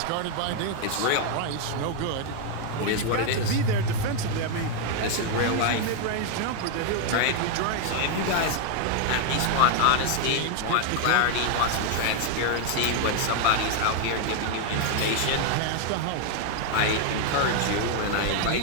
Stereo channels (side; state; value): both; different; correlation 0.00